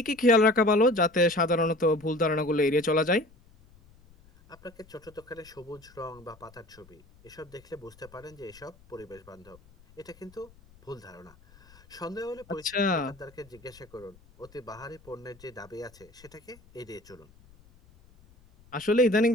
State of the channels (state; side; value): noise; left; rumble, 26 dB below the sound